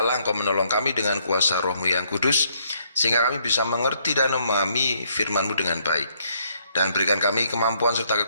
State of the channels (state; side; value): inverted; both; correlation -0.70